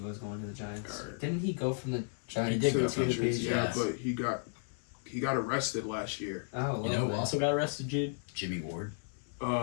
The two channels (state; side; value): silent; right; 55 dB below the other